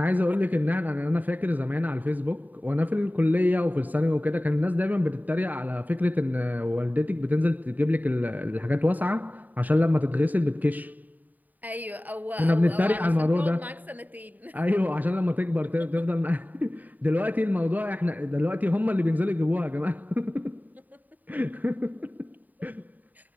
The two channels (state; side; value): late; left; 0.084 ms